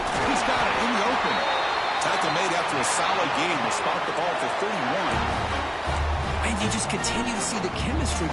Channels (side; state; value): both; identical; correlation 1.00